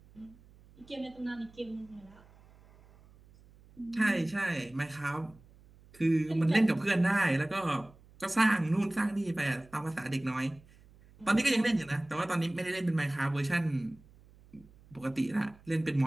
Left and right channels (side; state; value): right; noise; hum, 25 dB below the sound